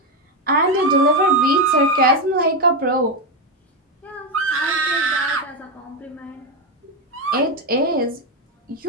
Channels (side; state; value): both; normal; correlation 0.08